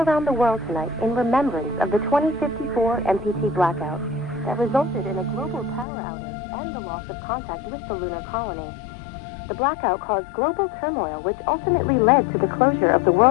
the world tonight in remembrance of the 2054 MPT blackout that resulted in a global power outage and the loss of contact with the lunar colony. The blackout caused global turmoil, which ultimately led to the closure of the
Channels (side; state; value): right; drops out; at 5.9 s